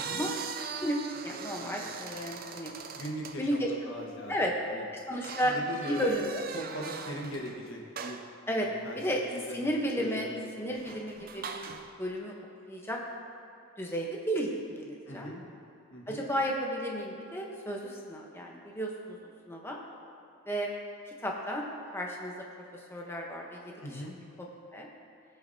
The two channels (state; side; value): normal; both; correlation 0.42